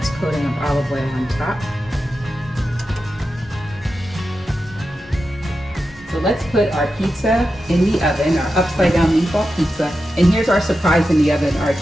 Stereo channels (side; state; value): both; normal; correlation 0.90